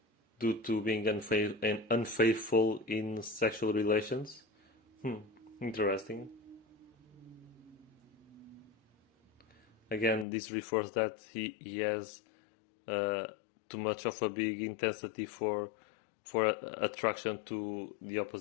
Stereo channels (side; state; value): right; drops out; at 10.2 s